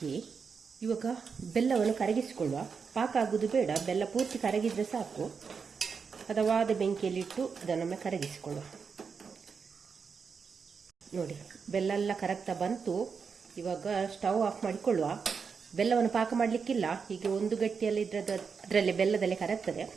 ಇವಾಗ ಬೆಲ್ಲವನ್ನು ಕರಗಿಸಿಕೊಳ್ಳುವ. ಪಾಕ ಆಗುವುದು ಬೇಡ, ಬೆಲ್ಲ ಪೂರ್ತಿ ಕರಗಿದ್ರೆ ಸಾಕು. ಹದವಾದ ಬೆಂಕಿಯಲ್ಲಿಟ್ಟು ಅದನ್ನೊಮ್ಮೆ ಕರಗಿಸಿಕೊಳ್ಳುವ. ನೋಡಿ, ಬೆಲ್ಲ ಎಲ್ಲ ಕರಗ್ತಾ ಬಂತು. ಇವಾಗ ಸ್ಟವ್ ಆಫ್ ಮಾಡಿಕೊಳ್ಳುವ. ಬೆಲ್ಲವನ್ನು ಪಾಕ ಮಾಡಲಿಕ್ಕಿಲ್ಲ, ಹೀಗೆ ಒಂದು ಗಟ್ಟಿಯಲ್ಲಿ ಅದರಲ್ಲಿ ಬೆಲ್ಲದಲ್ಲೇ ಕರಗ್ತದೆ.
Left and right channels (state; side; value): quieter; left; 5.7 dB